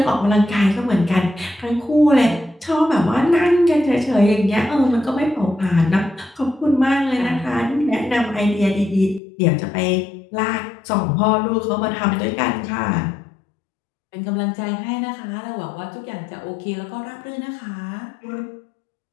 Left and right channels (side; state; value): right; drops out; at 9.2 s